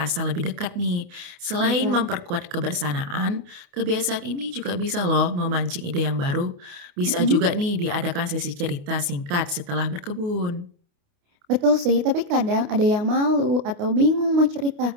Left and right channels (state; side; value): late; left; 29 ms